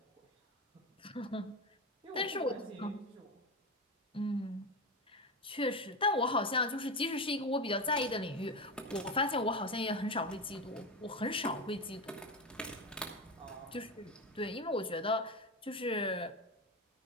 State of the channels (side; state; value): both; normal; correlation 0.18